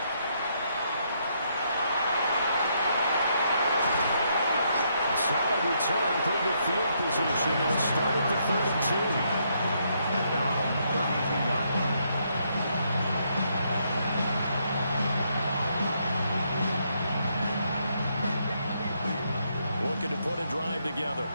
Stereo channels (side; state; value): both; inverted; correlation -0.75